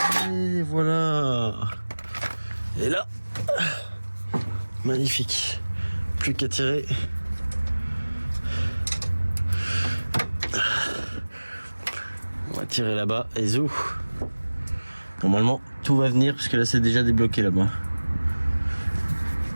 Et voilà. Et là, magnifique. Plus qu'à tirer. On va tirer là-bas et zou. Normalement, tout va venir parce que là, c'est déjà débloqué là-bas.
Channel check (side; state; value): both; inverted; correlation -1.00